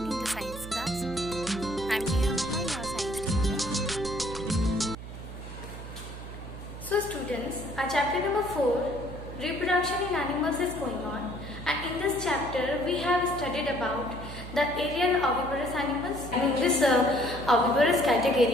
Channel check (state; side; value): noise; right; hum, 11 dB below the sound